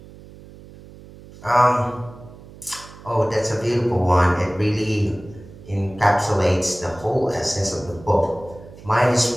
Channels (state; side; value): noise; right; hum, 19 dB below the sound